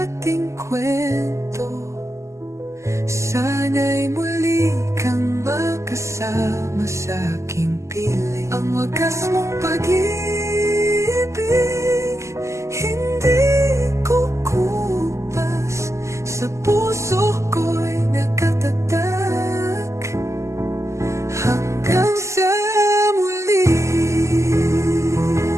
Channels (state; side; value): late; left; 0.14 ms